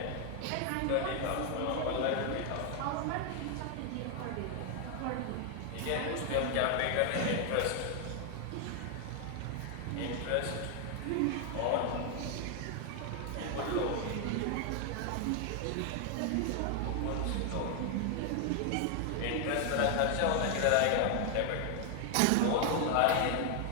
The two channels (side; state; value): both; different; correlation 0.00